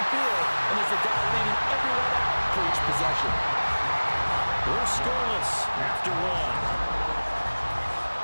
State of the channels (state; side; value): inverted; both; correlation -1.00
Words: field, and is the guy leading everyone out for each possession. We're scoreless after